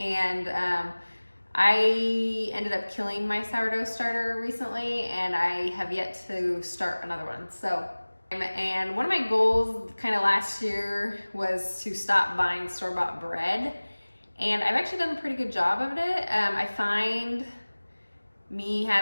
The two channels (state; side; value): inverted; both; correlation -1.00